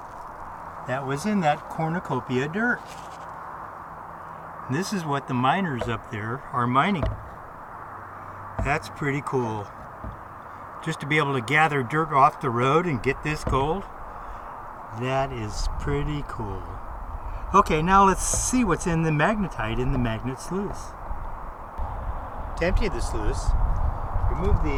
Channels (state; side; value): identical; both; correlation 1.00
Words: that was in that cornucopia dirt. And this is what the miners up there are mining. That's pretty cool. Just to be able to gather dirt off the road and get this gold, that is pretty cool. Okay, now let's see what's in the magnetite in the magnet sluice. To empty the sluice, remove